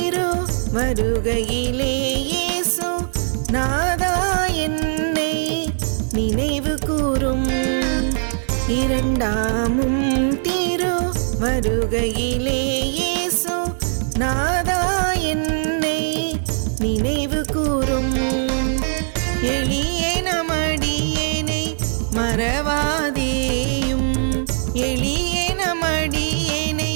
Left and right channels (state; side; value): silent; left; digital silence